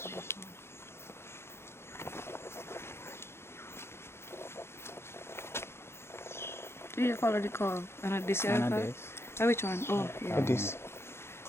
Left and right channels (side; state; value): right; late; 0.12 ms